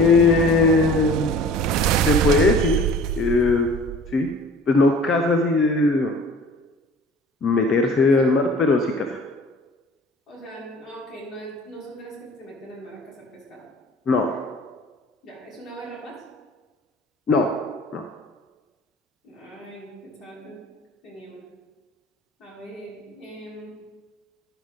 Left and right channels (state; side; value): normal; both; correlation 0.45